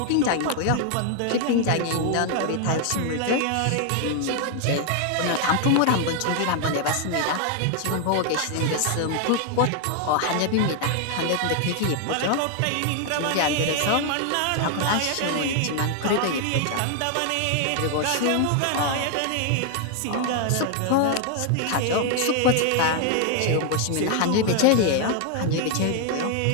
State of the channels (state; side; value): different; both; correlation 0.00